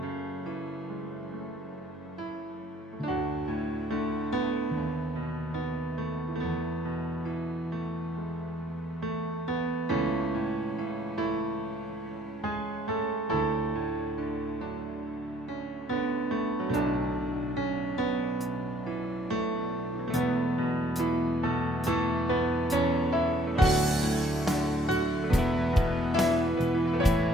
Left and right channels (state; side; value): normal; both; correlation 0.62